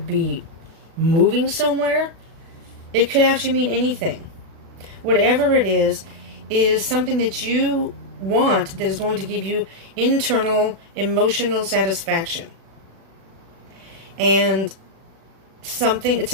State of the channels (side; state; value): left; late; 36 ms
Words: be moving somewhere. It could actually mean anything. Whatever it is something that you want that is going to give you internal emotional satisfaction. And it's